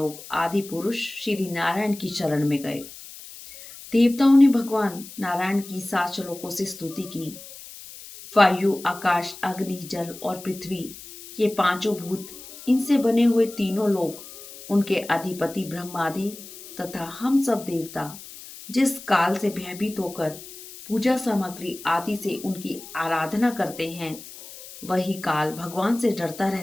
आदि पुरुष श्री नारायण की शरण में गए। देवताओं ने भगवान नारायण की 7 श्लोकों से स्तुति की। वायु, आकाश, अग्नि, जल और पृथ्वी, ये 5 भूत, इनसे बने हुए तीनों लोग, उनके अधिपति ब्रह्मादि तथा हम सब देवता जिस काल से भयभीत होकर पूजा सामग्री आदि से उनकी आराधना करते हैं, वही काल भगवान से डरता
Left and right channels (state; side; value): noise; left; hiss, 15 dB below the sound